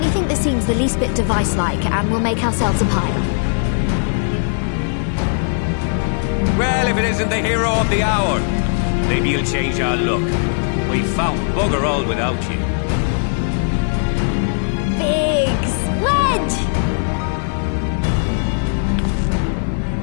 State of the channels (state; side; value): silent; right; digital silence